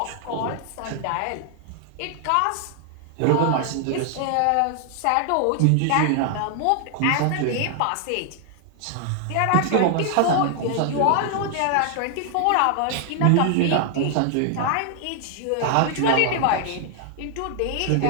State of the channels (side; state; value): both; different; correlation 0.00